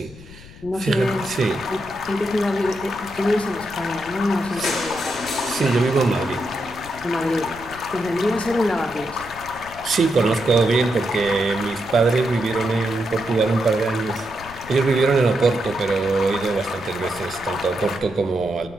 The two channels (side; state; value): left; noise; rumble, 18 dB below the sound